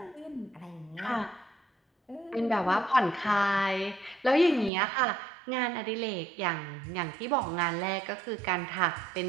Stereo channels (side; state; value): left; drops out; at 4.7 s